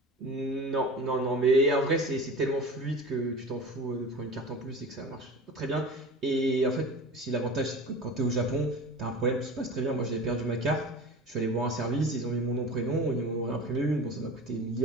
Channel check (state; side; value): normal; both; correlation 0.35